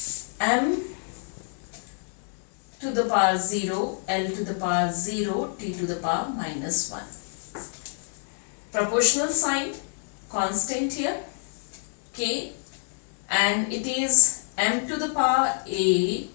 M to the power 0, L to the power 0, T to the power minus 1. Proportional sign, constant here, K, and it is M to the power A,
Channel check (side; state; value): right; silent; digital silence